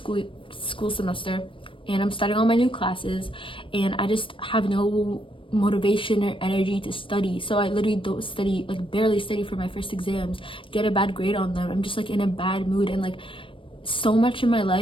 semester, and I'm starting all my new classes, and I just have no motivation or energy to study. So I literally don't study, like barely study for my first exams, get a bad grade on them. I'm just like in a bad mood, and like so much in my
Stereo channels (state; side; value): late; right; 0.25 ms